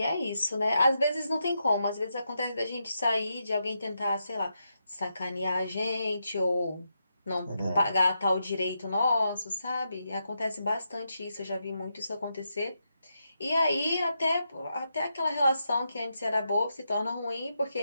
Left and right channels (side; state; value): both; inverted; correlation -0.84